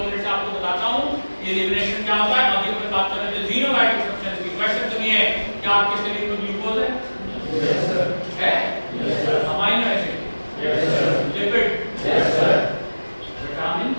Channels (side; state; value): both; inverted; correlation -1.00